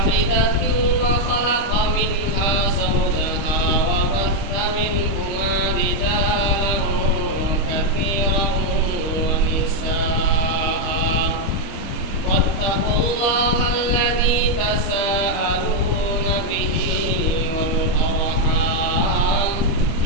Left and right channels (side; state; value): right; late; 25 ms